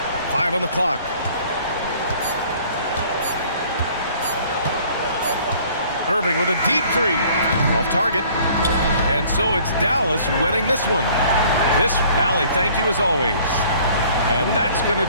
Five on the clock. Irving with a deep three. Off target. And so it's Dallas winning this one. Allie, thank you as always. And that's going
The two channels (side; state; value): both; inverted; correlation -0.55